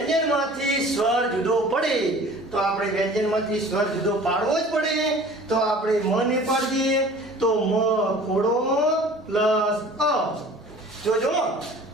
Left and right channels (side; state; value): both; normal; correlation 0.46